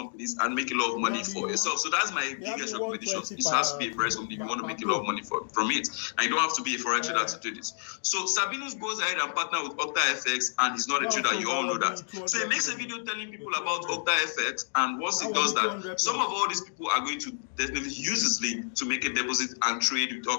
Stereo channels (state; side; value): silent; right; digital silence